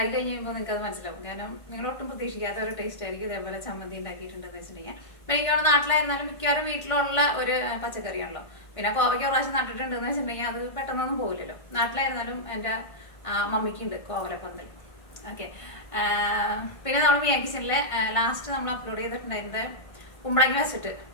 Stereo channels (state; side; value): late; right; 1.5 ms